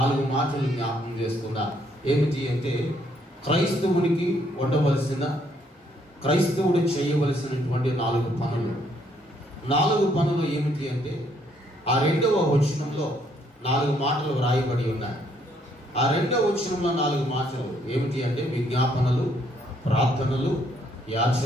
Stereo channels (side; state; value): both; normal; correlation 0.69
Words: మాటలు జ్ఞాపకం చేస్తున్నా. ఏమిటి అంటే క్రైస్తవునికి ఉండవలసిన, క్రైస్తవుడు చేయవలసినటువంటి 4 పనులు. 4 పనులు ఏమిటి అంటే ఆ 2వ వచనంలో 4 మాటలు వ్రాయబడి ఉన్నాయి. ఆ 2వ వచనంలో 4 మాటలు ఏమిటి అంటే విజ్ఞాపనలు, ప్రార్థనలు,